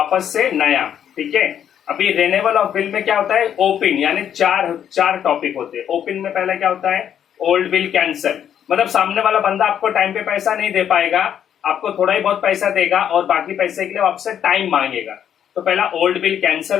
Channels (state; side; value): quieter; right; 9.3 dB